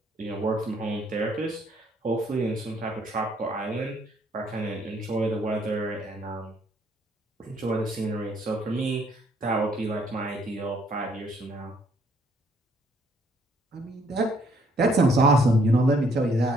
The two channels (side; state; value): both; normal; correlation 0.66